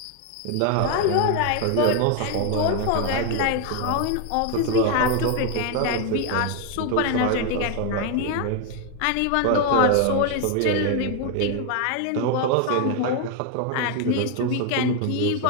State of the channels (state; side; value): different; both; correlation 0.01